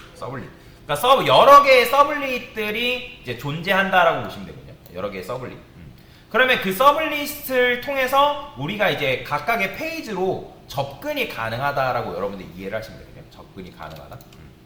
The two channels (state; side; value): identical; both; correlation 1.00